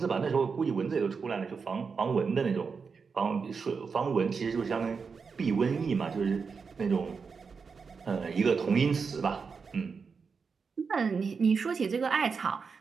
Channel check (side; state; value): left; quieter; 5.4 dB